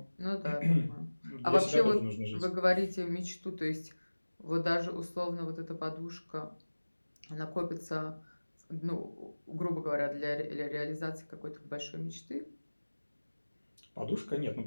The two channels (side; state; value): both; inverted; correlation -1.00